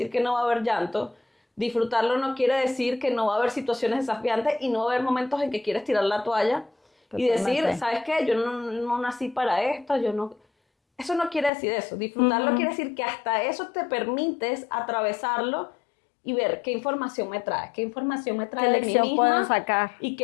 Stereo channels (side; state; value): right; drops out; at 11.5 s